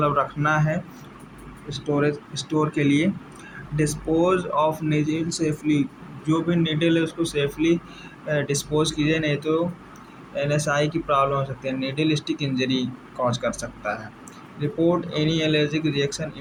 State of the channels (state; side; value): identical; both; correlation 1.00